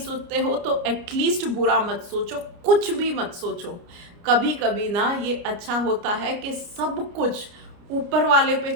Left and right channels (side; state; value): left; late; 29 ms